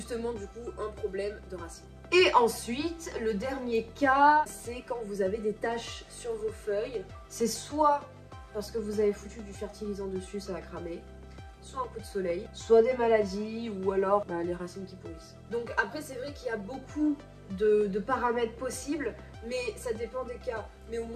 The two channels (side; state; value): both; identical; correlation 1.00